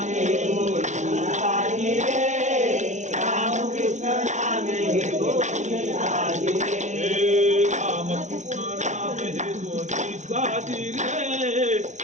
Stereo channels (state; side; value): late; left; 0.35 ms